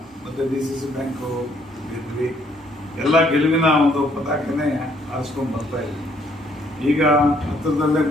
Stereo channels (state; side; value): normal; both; correlation 0.67